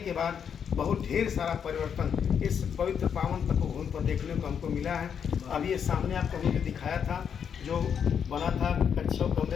बाद बहुत ढेर सारा परिवर्तन इस पवित्र पावन तपोभूमि पर देखने को हमको मिला है। अभी ये सामने आपको हमने दिखाया था जो बना था कच्छों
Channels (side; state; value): right; quieter; 7.6 dB